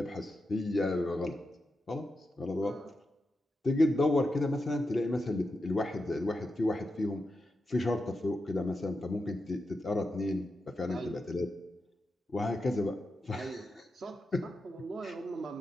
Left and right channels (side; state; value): both; normal; correlation 0.88